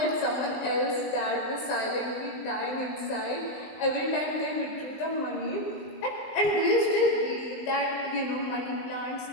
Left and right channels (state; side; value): late; right; 19 ms